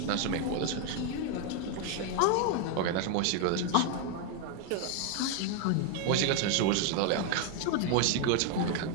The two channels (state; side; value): different; both; correlation 0.01